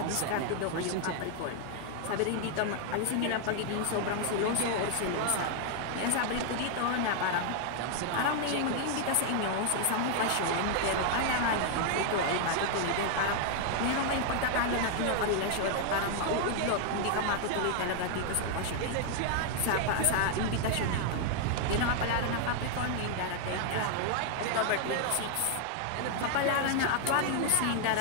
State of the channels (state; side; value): different; both; correlation 0.00